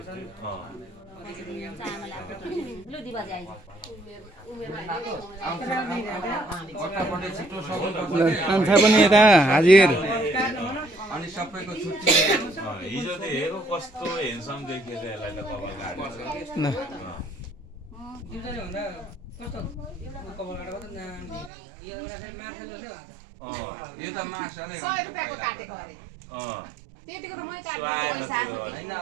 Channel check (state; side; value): drops out; left; at 21.5 s